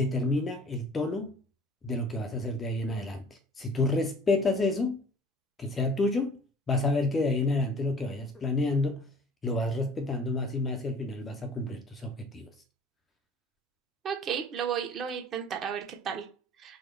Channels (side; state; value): both; normal; correlation 0.49